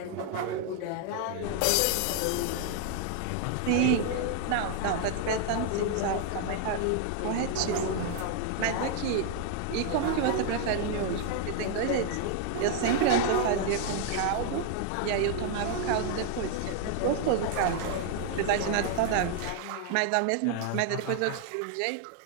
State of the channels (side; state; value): both; different; correlation 0.00